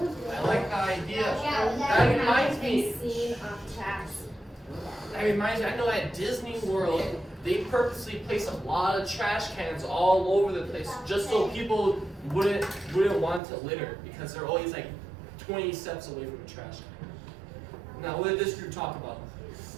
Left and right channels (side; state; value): left; drops out; at 13.4 s